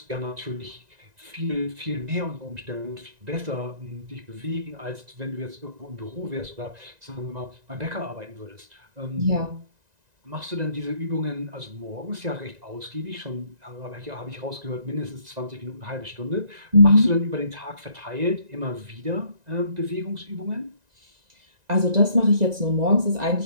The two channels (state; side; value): late; left; 1.9 ms